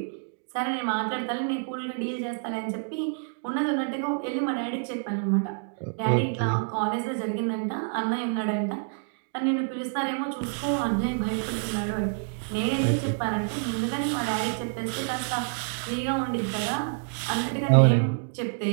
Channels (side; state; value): left; silent; 60 dB below the other